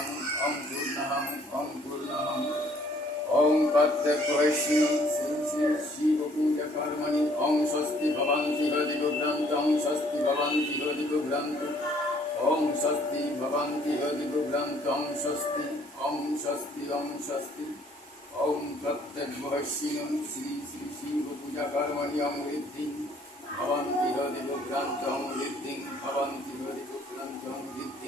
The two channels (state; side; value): normal; both; correlation 0.61